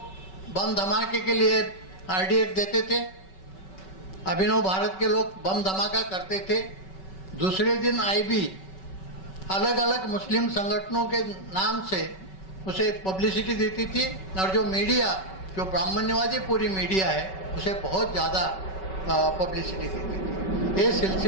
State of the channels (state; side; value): late; right; 5.3 ms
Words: बम धमाके के लिए आरडीएक्स देते थे, अभिनव भारत के लोग बम धमाका करते थे। दूसरे दिन आईबी अलग अलग मुस्लिम संगठनों के नाम से उसे पब्लिसिटी देती थी, और जो मीडिया, जो ब्राह्मण्यवादी पूरी मीडिया है, उसे बहुत ज़्यादा पब्लिसिटी देती थी। ये